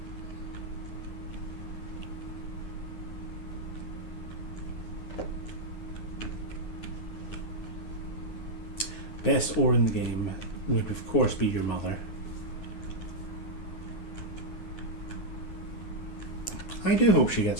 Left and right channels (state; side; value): late; right; 9.6 ms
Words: best ore in the game would of course be your mother. I do hope she